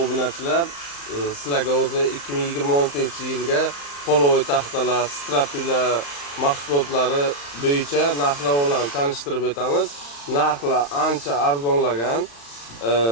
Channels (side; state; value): right; late; 35 ms